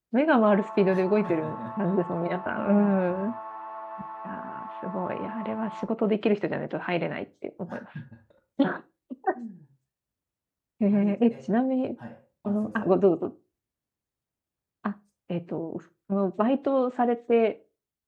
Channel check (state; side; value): identical; both; correlation 1.00